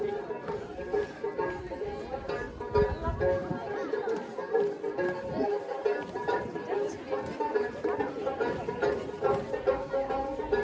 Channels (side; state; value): both; identical; correlation 1.00